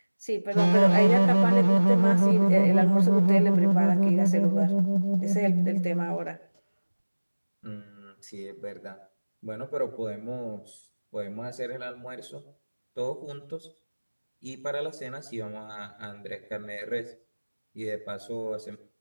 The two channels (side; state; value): both; inverted; correlation -1.00